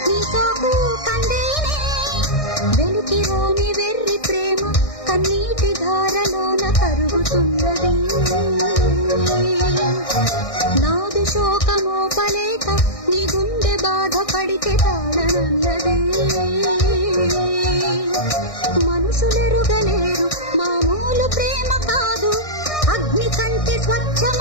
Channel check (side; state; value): right; late; 1.6 ms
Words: నీ సోకు కందేనే వెలికిరాని వెర్రి ప్రేమ కన్నీటి ధారలోన కరుగుతున్నది నాదు శోకమోపలేక నీ గుండె బాధపడితే తాళనన్నది మనసులెరుగలేరు మామూలు ప్రేమ కాదు అగ్ని కంటే